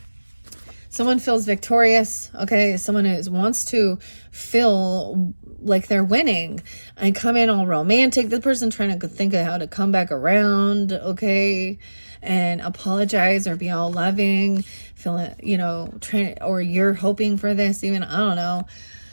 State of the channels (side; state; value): both; inverted; correlation -1.00